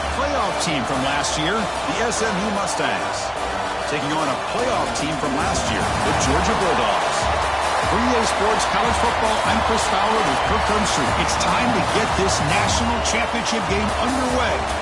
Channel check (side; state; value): both; identical; correlation 1.00